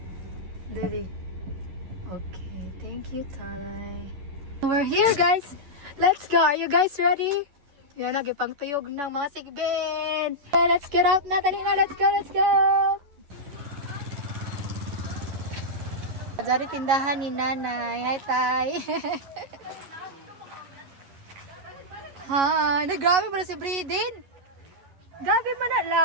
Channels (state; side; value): late; left; 11 ms